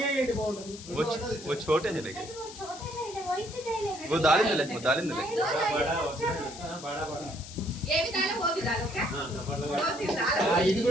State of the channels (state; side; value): noise; left; hiss, 14 dB below the sound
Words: वो छोटे हैं लेकिन वो दालिंद ले वो दालिंद ले ये भी डालो वो भी डालो क्या दो तीन डालो ఇది